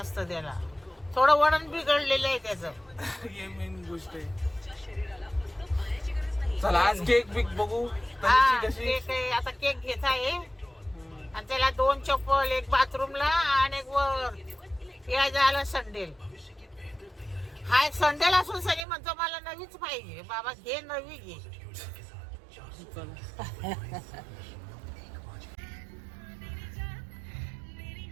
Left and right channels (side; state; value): left; drops out; at 18.9 s